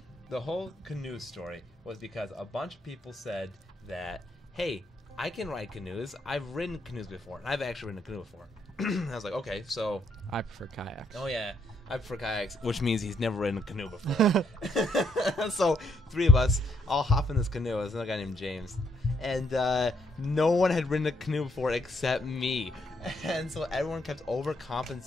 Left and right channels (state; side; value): normal; both; correlation 0.74